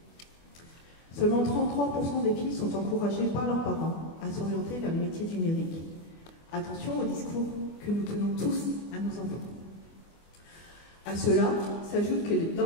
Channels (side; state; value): right; late; 24 ms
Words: Seulement 33% des filles sont encouragées par leurs parents à s'orienter vers les métiers du numérique. Attention au discours que nous tenons tous à nos enfants. À cela s'ajoute que